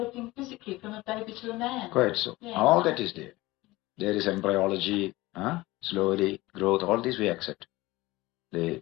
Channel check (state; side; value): quieter; right; 19.7 dB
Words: physically from a baby to a man. Quite so. Yeah. All that is there. There is embryology, slowly, growth, all this we accept. The